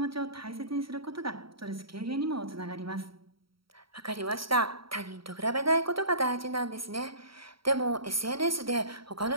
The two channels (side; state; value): left; late; 0.75 ms